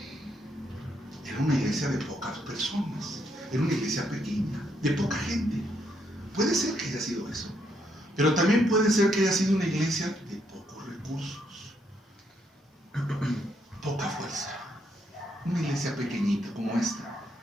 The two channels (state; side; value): normal; both; correlation 0.75